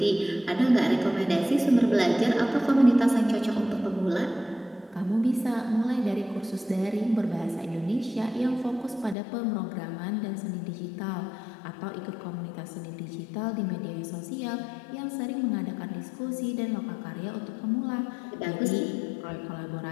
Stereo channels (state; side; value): drops out; right; at 9.2 s